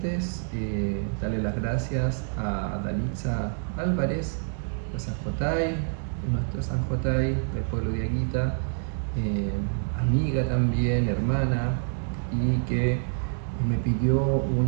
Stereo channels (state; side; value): silent; left; digital silence